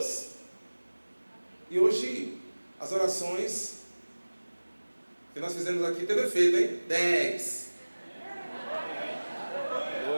E hoje as orações que nós fizemos aqui teve efeito, hein? 10.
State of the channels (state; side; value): inverted; both; correlation -1.00